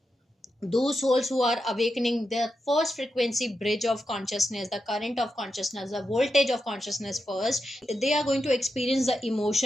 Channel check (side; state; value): both; normal; correlation 0.87